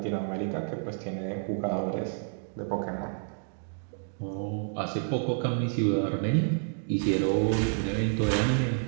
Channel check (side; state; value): left; silent; digital silence